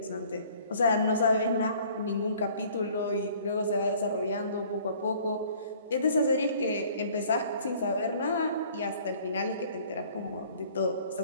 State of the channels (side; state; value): both; inverted; correlation -0.55